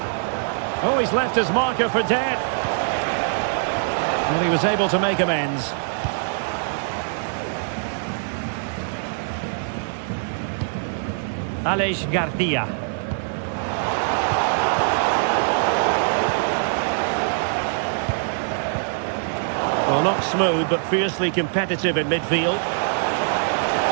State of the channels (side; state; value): left; silent; digital silence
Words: Oh, he's left his marker for dead. Well, he was able to make amends. Aleix Garcia. Well, not smooth, but fiercely competitive in midfield.